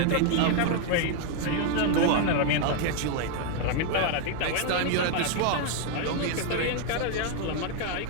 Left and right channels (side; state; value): both; different; correlation 0.00